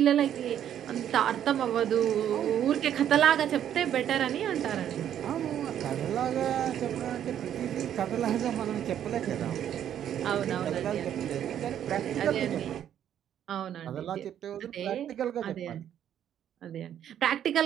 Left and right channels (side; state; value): left; quieter; 10.1 dB